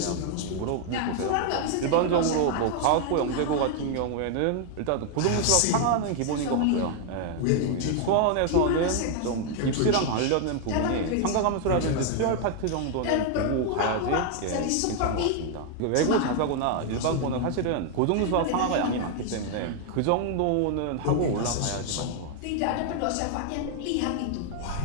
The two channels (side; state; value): both; different; correlation 0.00